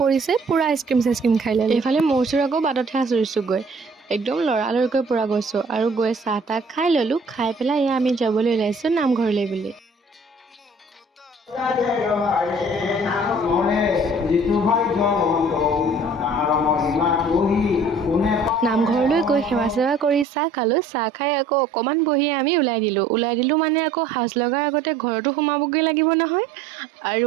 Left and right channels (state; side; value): drops out; left; at 20.2 s